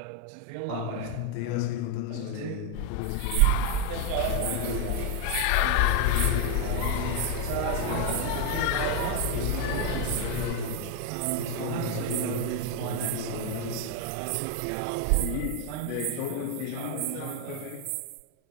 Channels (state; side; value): different; both; correlation 0.01